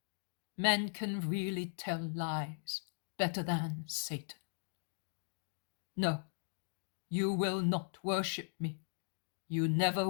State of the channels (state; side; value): silent; right; digital silence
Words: men can really tell lies better than Satan. No, you will not worship me. You never